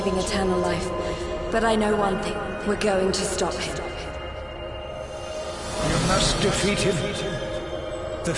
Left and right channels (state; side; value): identical; both; correlation 1.00